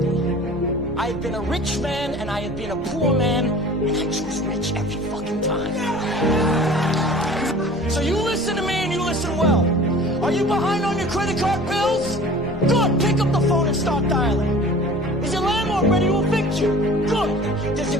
I have been a rich man and I have been a poor man, and I choose rich every fucking time. So you listen to me and you listen well. Are you behind on your credit card bills? Good. Pick up the phone and start dialing. Is your landlord ready to evict you? Good. Does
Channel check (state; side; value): noise; left; hum, 21 dB below the sound